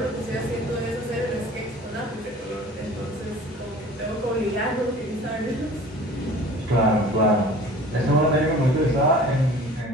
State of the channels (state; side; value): normal; both; correlation 0.44